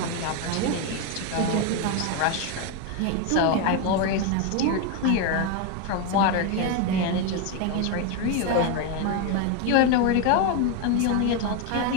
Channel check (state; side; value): different; both; correlation 0.02